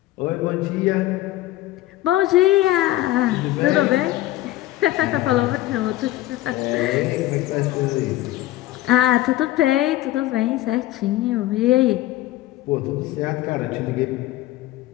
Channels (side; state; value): right; quieter; 15.9 dB